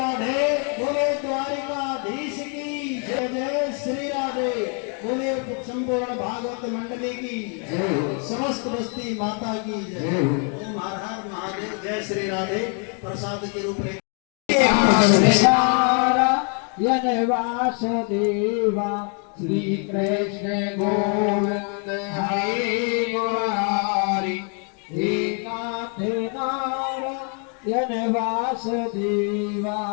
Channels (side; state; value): right; quieter; 40.0 dB